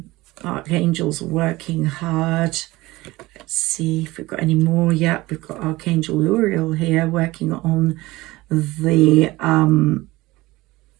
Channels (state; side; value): quieter; left; 19.7 dB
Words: Archangels are working hard. Let's see if we've got any more yet. We've got Archangel Uriel here working on the